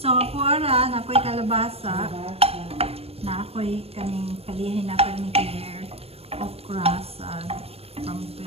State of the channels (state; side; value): late; left; 0.29 ms